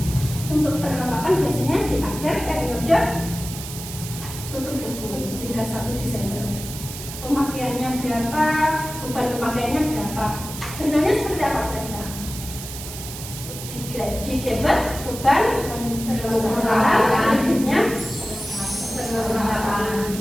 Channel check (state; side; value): noise; right; hiss, 10 dB below the sound